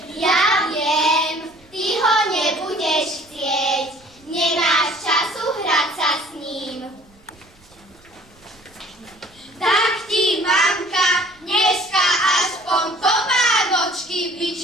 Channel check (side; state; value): right; noise; rumble, 29 dB below the sound